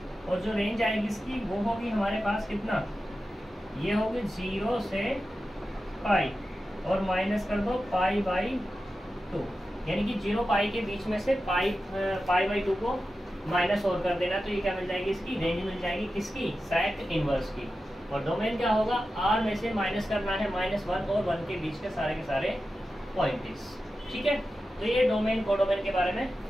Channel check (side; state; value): both; normal; correlation 0.92